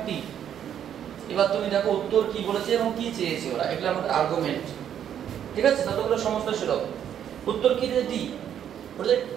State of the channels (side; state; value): left; quieter; 9.5 dB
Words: t। এবার তুমি দেখো উত্তর কি বলেছে এবং কি চেয়েছে ওরা, এগুলো আমাদের আর্গুমেন্ট। ঠিক আছে, ততগুলো সমস্ত সুলভ। উত্তর কি দিয়েছে? d বলে